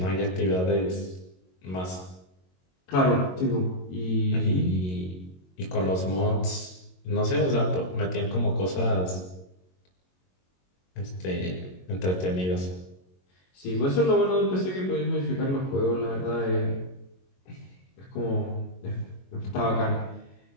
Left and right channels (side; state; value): right; late; 22 ms